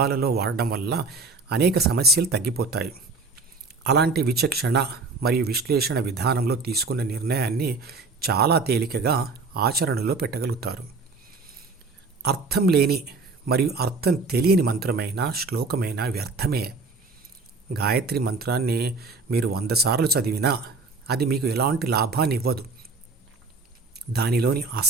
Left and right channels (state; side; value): quieter; left; 3.9 dB